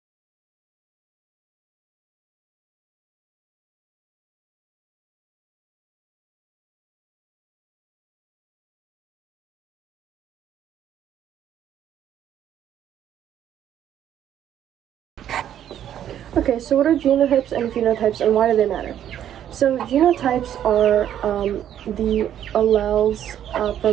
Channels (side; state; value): left; quieter; 10.5 dB